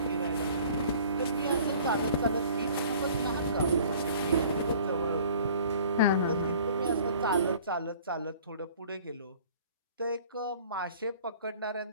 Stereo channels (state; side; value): inverted; both; correlation -0.50